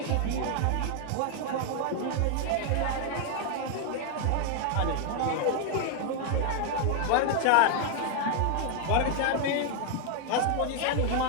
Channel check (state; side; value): different; both; correlation 0.00